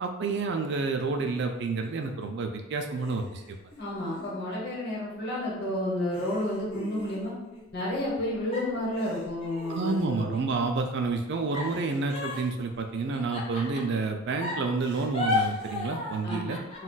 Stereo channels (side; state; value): both; normal; correlation 0.40